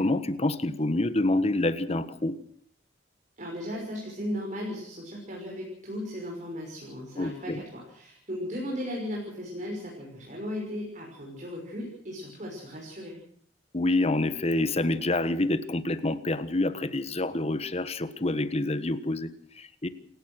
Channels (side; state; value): both; normal; correlation 0.64